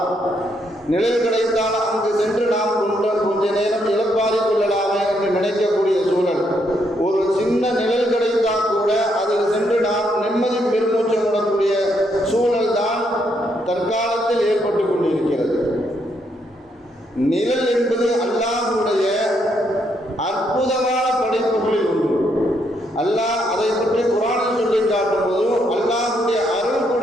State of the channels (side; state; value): both; normal; correlation 0.75